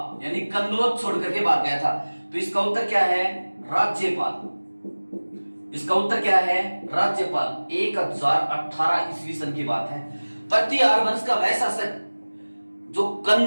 यानी कन्नौज छोड़कर के भाग गया था। तो इसका उत्तर क्या है? राज्यपाल। इसका उत्तर क्या है? राज्यपाल। 1018 ईस्वी सन की बात है। प्रतिहार वंश का वह शासक जो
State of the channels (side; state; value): both; inverted; correlation -1.00